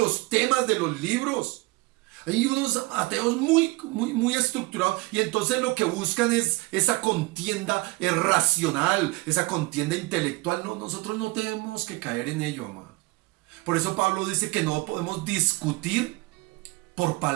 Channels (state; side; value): quieter; left; 23.2 dB